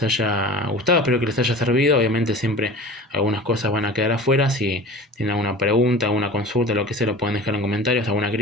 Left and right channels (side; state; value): both; normal; correlation 0.38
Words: haya gustado, espero que les haya servido. Obviamente siempre algunas cosas van a quedar afuera. Si tienen alguna pregunta, alguna consulta, lo que sea, lo pueden dejar en comentarios, alguna